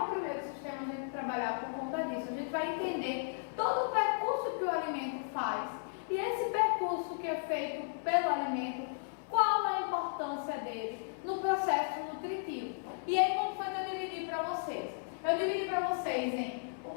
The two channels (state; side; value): silent; right; 55 dB below the other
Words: primeiro sistema a gente trabalhar por conta disso. A gente vai entender todo o percurso que o alimento faz. E esse percurso que é feito pelo alimento, qual a importância dele no processo nutritivo. E aí, como foi que eu dividi para vocês? Eu dividi para vocês em o